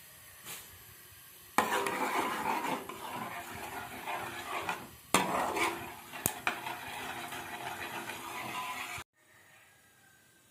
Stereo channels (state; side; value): identical; both; correlation 1.00